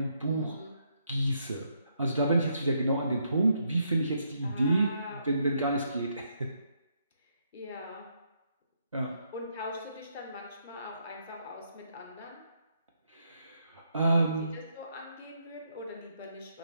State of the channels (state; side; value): inverted; both; correlation -0.76